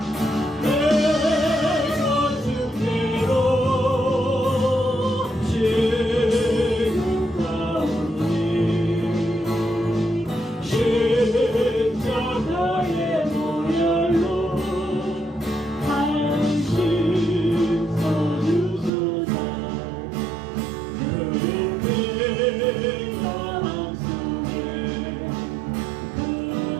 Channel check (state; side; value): drops out; left; at 18.9 s